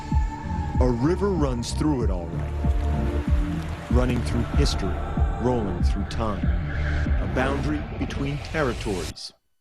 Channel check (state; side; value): identical; both; correlation 1.00